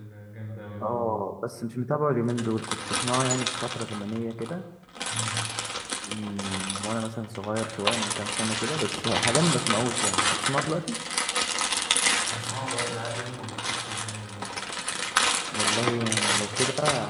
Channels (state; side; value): identical; both; correlation 1.00